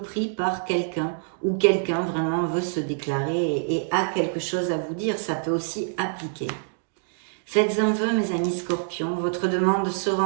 par quelqu'un ou quelqu'un vraiment veut se déclarer et a quelque chose à vous dire. Ça peut aussi appliquer. Faites un vœu, mes amis scorpions, votre demande sera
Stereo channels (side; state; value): left; silent; digital silence